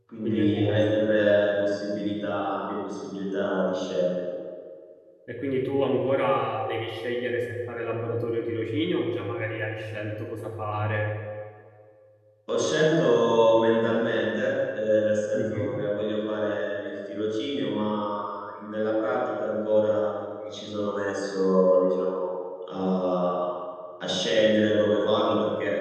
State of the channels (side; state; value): both; identical; correlation 1.00